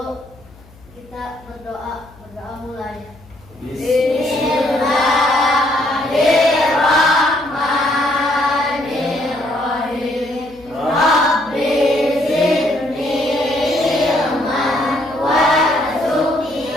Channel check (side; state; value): left; noise; hum, 25 dB below the sound